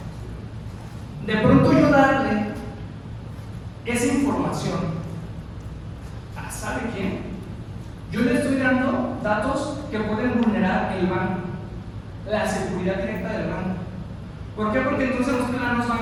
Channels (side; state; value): both; identical; correlation 1.00